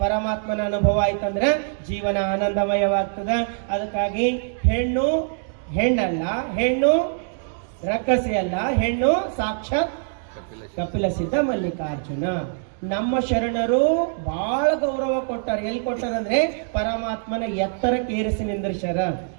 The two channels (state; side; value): silent; left; digital silence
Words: ಪರಮಾತ್ಮನ ಅನುಭವ ಆಯ್ತಂದ್ರ ಜೀವನ ಆನಂದಮಯವಾಗ್ತದ. ಅದಕ್ಕಾಗಿ ಹೆಣ್ಣು ಹೆಣ್ಣಲ್ಲ, ಹೆಣ್ಣು ರಕ್ಕಸಿ ಅಲ್ಲ, ಹೆಣ್ಣು ಸಾಕ್ಷಾತ್ ಕಪಿಲ ಸಿದ್ಧ ಮಲ್ಲಿಕಾರ್ಜುನ. ನಮ್ಮ ಶರಣರು ಬಹಳ ಗೌರವ ಕೊಟ್ಟಾರ. ಎಲ್ಲಿ ಕೊಟ್ಟಾರಂದ್ರೆ ಪರಮಾತ್ಮನ ಎತ್ತರಕ್ಕೆ ಏರಿಸಿ ನಿಂದಿರ್ಸ್ಯಾರ,